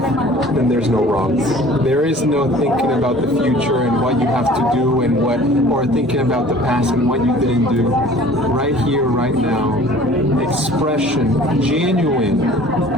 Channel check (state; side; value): normal; both; correlation 0.48